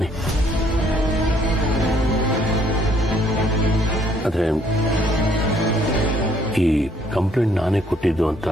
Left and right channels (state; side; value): normal; both; correlation 0.65